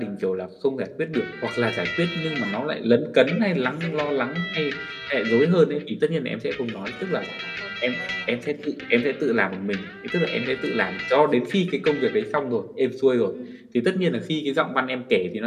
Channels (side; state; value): both; identical; correlation 1.00